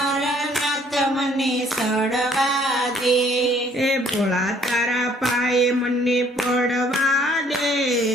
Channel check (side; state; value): both; normal; correlation 0.61